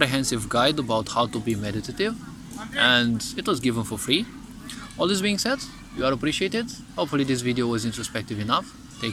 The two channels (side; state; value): both; identical; correlation 1.00